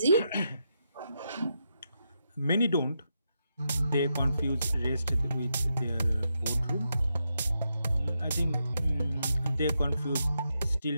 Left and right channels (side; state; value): both; inverted; correlation -0.84